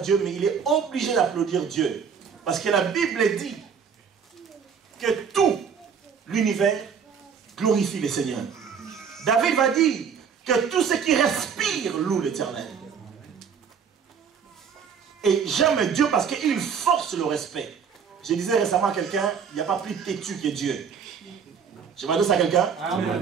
mais il est obligé d'applaudir Dieu. Parce que la Bible dit que tout l'univers glorifie le Seigneur. David va dire que tout ce qui respire loue l'Éternel. Et j'aime Dieu parce qu'il force le respect. Je disais récemment à quelqu'un, il n'y a pas plus têtu que Dieu. Je m'adresse à quelqu'un.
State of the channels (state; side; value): quieter; left; 6.8 dB